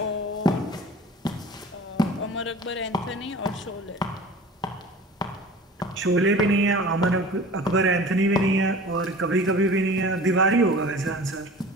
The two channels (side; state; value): both; normal; correlation 0.41